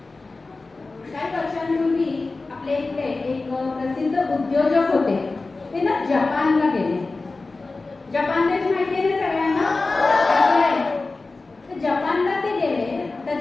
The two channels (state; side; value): quieter; right; 3.6 dB